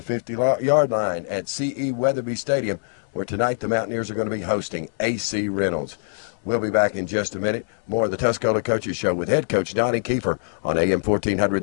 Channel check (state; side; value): silent; right; digital silence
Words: 50-yard line at C.E. Weatherby Stadium, where tonight the Mountaineers are going to be hosting AC Reynolds. We'll be back in just a minute. More of the Tuscola Coaches Show with head coach Donnie Kiefer on AM 1400